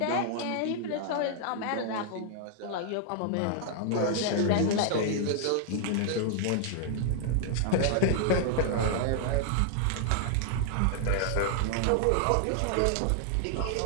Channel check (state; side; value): different; both; correlation 0.00